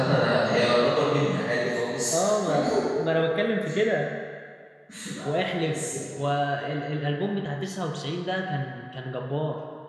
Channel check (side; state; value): both; identical; correlation 1.00